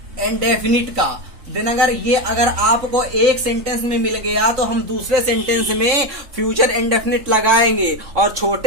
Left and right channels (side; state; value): left; late; 3.7 ms